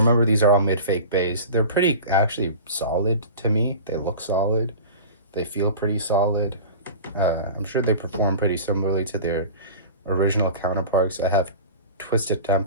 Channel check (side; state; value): both; inverted; correlation -0.36